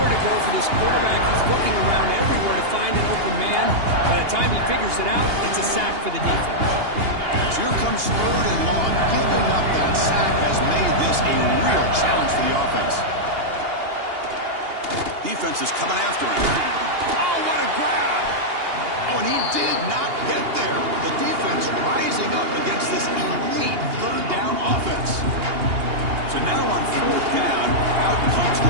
to go for this quarterback. He's looking around everywhere to find an open man. By the time he figures it out, it's a sack for the defense. So here comes 3rd and long. Giving up that sack has made this a real challenge for the offense. Defense is coming after him. Oh, what a grab! Oh, and he did not get there. The defense rising up against this elite 3rd down offense. So now on 4th down, out comes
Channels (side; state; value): left; late; 2.8 ms